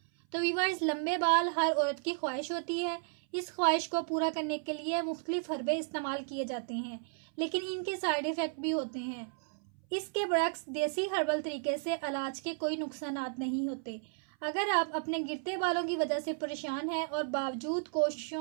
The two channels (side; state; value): left; silent; 55 dB below the other